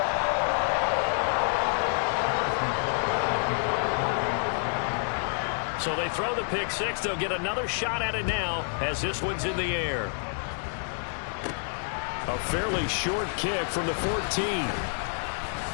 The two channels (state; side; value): silent; right; 59 dB below the other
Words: So they throw the pick 6. They'll get another shot at it now as this one's in the air. A fairly short kick from the 14.